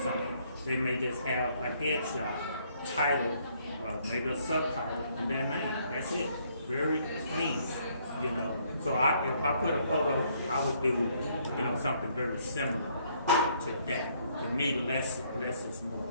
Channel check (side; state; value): both; inverted; correlation -0.67